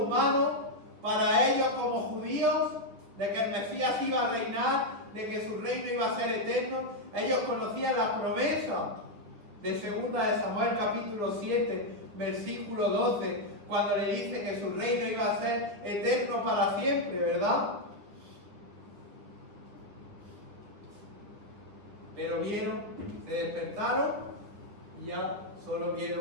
humano para ellos como judíos, de que el Mesías iba a reinar, de que su reino iba a ser eterno, ellos conocían las promesas de 2 de Samuel capítulo 7, versículo 12, cuando le dice que su reino iba a ser eterno para siempre, ¿verdad? Pero vieron, se despertaron y ya solo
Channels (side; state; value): left; late; 9.5 ms